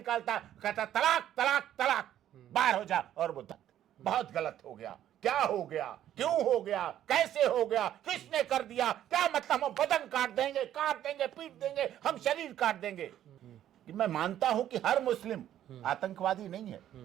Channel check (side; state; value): left; quieter; 11.5 dB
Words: कहता तलाक तलाक तलाक, बाहर हो जा। और वो बहुत गलत हो गया, क्या हो गया, क्यों हो गया, कैसे हो गया, किसने कर दिया, क्या मतलब, हम बदन काट देंगे, पीट देंगे, हम शरीर काट देंगे। कि मैं मानता हूं कि हर मुस्लिम आतंकवादी नहीं है,